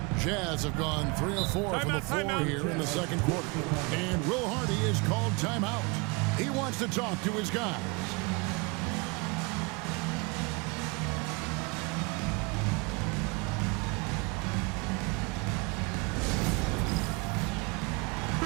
Jazz have gone 3 of 4 from the floor here in the second quarter. And Will Hardy is called timeout. He wants to talk to his guys.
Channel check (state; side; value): quieter; left; 29.0 dB